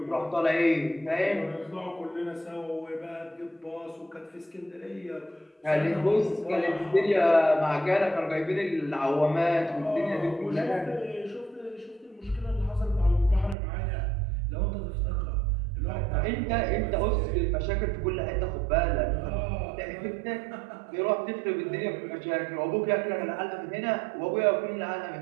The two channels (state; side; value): drops out; left; at 13.6 s